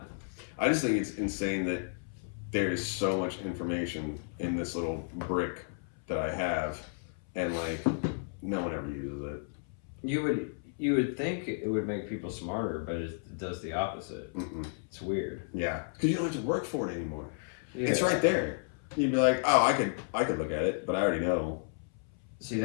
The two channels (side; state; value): right; silent; 56 dB below the other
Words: I just think it's insane that there's so much information in this little brick that I have, and like no one ever uses it. You would think it would make people smarter, but it does the opposite. It's weird. Yeah, because you don't have to work for it anymore. Yeah. It's right there. You'd be like, oh, I could look at it, but I already know. See,